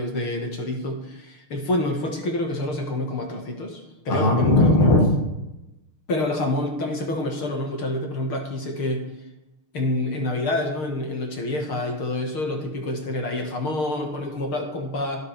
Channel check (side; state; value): right; late; 6.6 ms